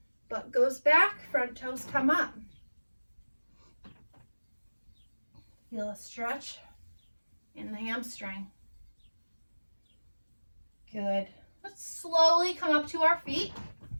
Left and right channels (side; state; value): both; inverted; correlation -1.00